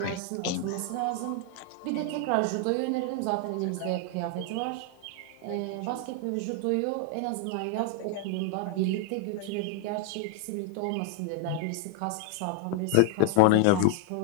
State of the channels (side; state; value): both; different; correlation 0.00